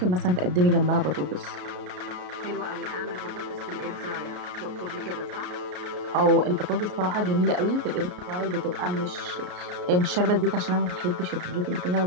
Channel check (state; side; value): late; left; 33 ms